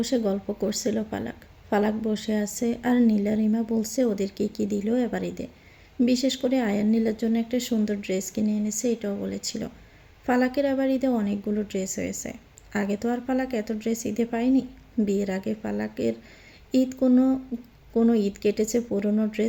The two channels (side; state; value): both; identical; correlation 1.00